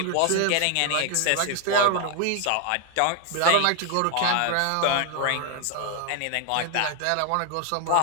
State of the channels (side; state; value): both; different; correlation 0.01